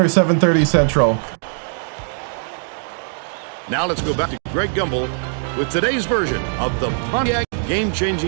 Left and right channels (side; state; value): left; silent; digital silence